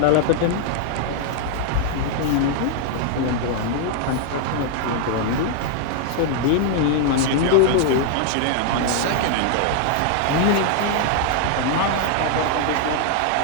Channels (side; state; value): both; different; correlation 0.00